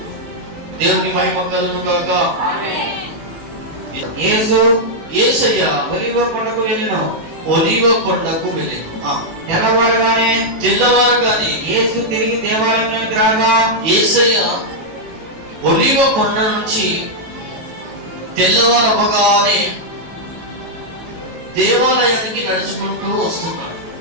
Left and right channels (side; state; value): left; late; 18 ms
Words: దేవునికి మహిమ కలుగును గాక. యేసయ్య ఒలీవ కొండకు వెళ్ళిన తెల్లవారగానే యేసు తిరిగి దేవాలయానికి రాగా, యేసయ్య ఒలీవ కొండ నుంచి తెల్లవారవగానే దేవాలయానికి నడుచుకుంటూ వస్తున్నాడు.